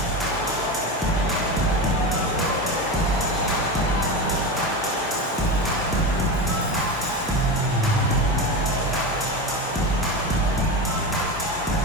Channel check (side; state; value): both; normal; correlation 0.21